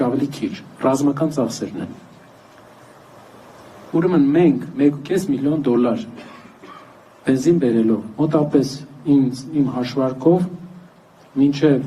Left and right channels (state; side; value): identical; both; correlation 1.00